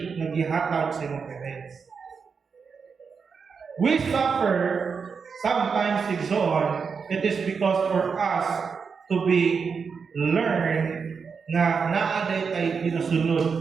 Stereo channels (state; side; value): quieter; left; 5.7 dB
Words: na gihatag sa imong parents. We suffer sometimes igsoon, it is because for us to be learn na naaday tay